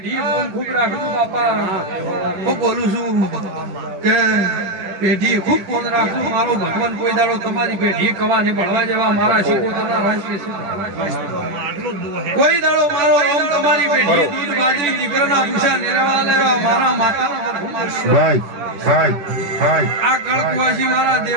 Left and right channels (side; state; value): left; late; 10 ms